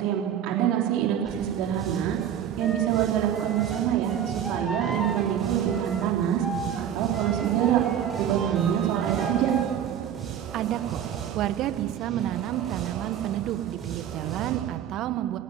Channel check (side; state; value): left; quieter; 9.6 dB